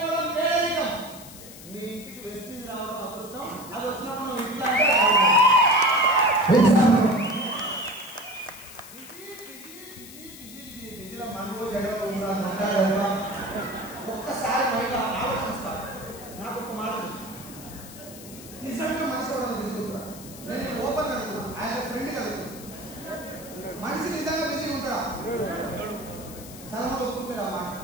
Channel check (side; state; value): left; noise; hiss, 16 dB below the sound